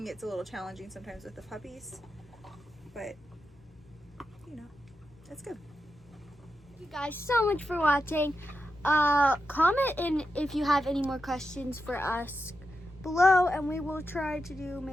it's a little challenging sometimes with the puppies, but it's good. Thank you guys so much for watching. Comment in if you have any more questions for us below, and we will try to do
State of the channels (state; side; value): normal; both; correlation 0.88